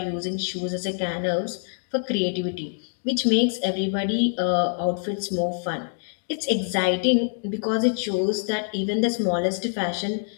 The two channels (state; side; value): silent; right; digital silence